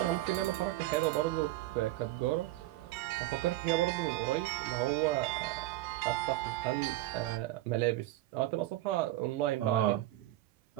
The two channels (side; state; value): left; quieter; 16.2 dB